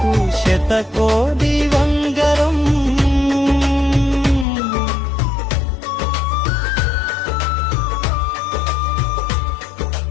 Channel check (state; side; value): drops out; right; at 4.5 s